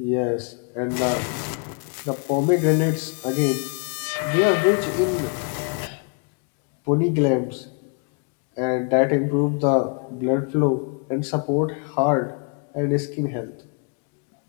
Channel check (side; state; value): right; quieter; 38.9 dB